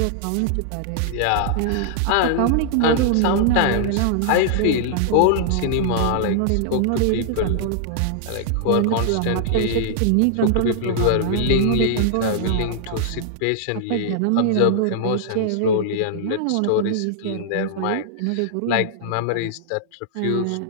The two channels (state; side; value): different; both; correlation -0.01